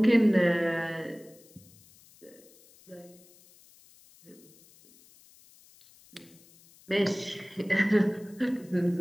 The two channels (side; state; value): left; noise; hiss, 26 dB below the sound